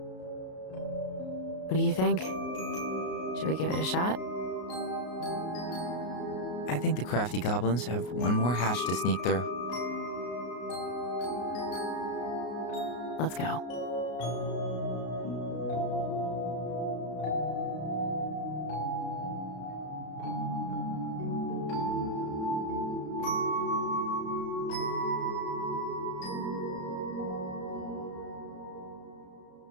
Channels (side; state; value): right; late; 33 ms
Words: do you think? Should we give it a shot? I think the crafty goblins have one more hatch to sneak through. Let's go.